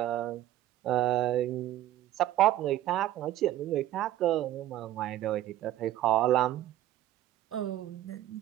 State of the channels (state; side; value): quieter; left; 13.6 dB